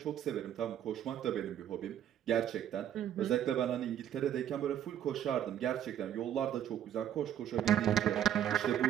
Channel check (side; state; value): left; quieter; 10.5 dB